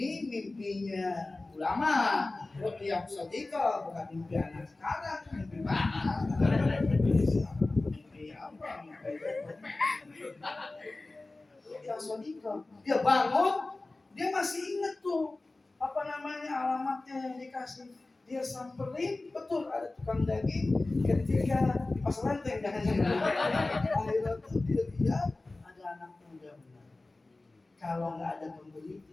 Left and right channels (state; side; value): quieter; right; 3.1 dB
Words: mimpinya ulama, Ruqyah Shadiqah, bukan mimpi anak sekarang. Mimpi mana? Mimpi apa? Ruqyah Shadiqah. Dia bangun, dia masih ingat tuh apa namanya alamatnya yang dikasih. Dia samperin, betul ada tukang daging. Ketika di pasar lanteng jangan-jangan. Akhirnya tuh dia lihat ada anak muda. Kalau nggak ada pembeli